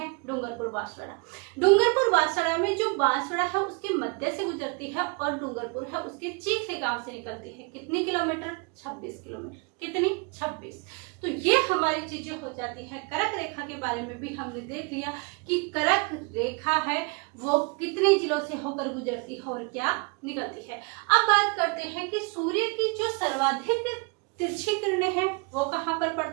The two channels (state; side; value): quieter; left; 31.6 dB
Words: डूंगरपुर बांसवाड़ा। डूंगरपुर बांसवाड़ा में जो बांसवाड़ा है उसके मध्य से गुजरती है और डूंगरपुर है उसके चीख से गांव से निकलती है। कितनी किलोमीटर 26 किलोमीटर। कितनी 26। तो ये हमारी चीजें हो जाती है करक रेखा के बारे में भी हमने देख लिया कि कर्क रेखा है वो कितने जिलों से होकर गुजरती है और क्या निकलती है। अब बात करते हैं कि सूर्य की जो सर्वाधिक तिरछी किरणें हैं वो कहाँ पर